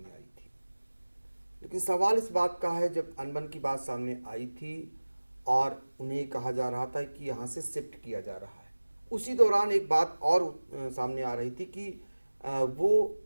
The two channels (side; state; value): both; inverted; correlation -1.00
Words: आई थी। लेकिन सवाल इस बात का है, जब अनबन की बात सामने आई थी और उन्हें कहा जा रहा था कि यहाँ से शिफ्ट किया जा रहा है, उसी दौरान एक बात और सामने आ रही थी कि वो